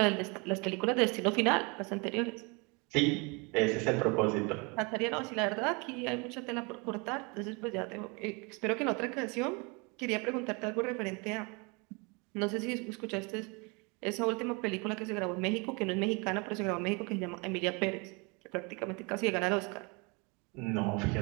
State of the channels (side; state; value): left; quieter; 29.9 dB